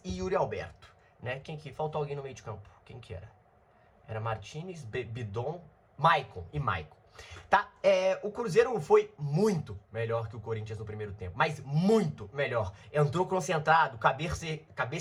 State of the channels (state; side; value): identical; both; correlation 1.00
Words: e Yuri Alberto, né? Faltou alguém no meio de campo, quem que era? Era Martínez, Bidon, Maicon e Maicon. Tá? O Cruzeiro foi muito melhor que o Corinthians no primeiro tempo, mas muito melhor. Entrou concentrado,